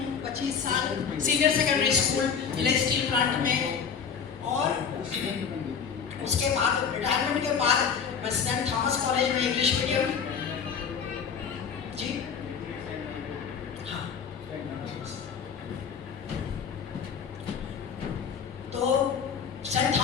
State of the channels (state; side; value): quieter; right; 6.8 dB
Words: 25 साल senior secondary school village steel plant में, और उसके बाद रिटायरमेंट के बाद मैं सेंट थॉमस कॉलेज में इंग्लिश मीडियम, जी हाँ, तो सेंट